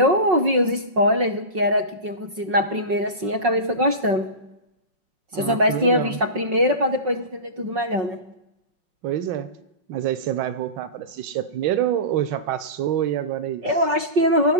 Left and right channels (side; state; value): left; late; 5.4 ms